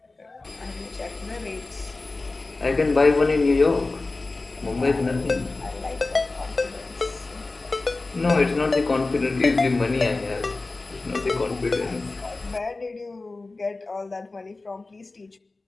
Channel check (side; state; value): right; quieter; 3.4 dB